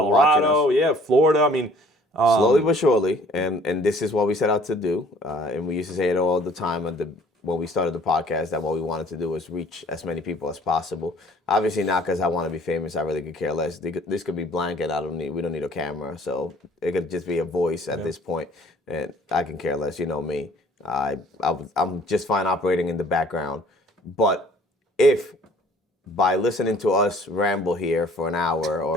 watching us. Colorado, Florida. Slowly but surely, and this is what we set out to do. And we used to say it all the time when we started the podcast, that what we wanted to do was reach as many people as possible. Obviously not because I want to be famous. I really could care less. This could be blank, and we don't need a camera. So it could just be a voice at this point, and I can care less. You know me. I'm just fine operating in the background. But if by listening to us ramble here for an hour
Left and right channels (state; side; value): normal; both; correlation 0.55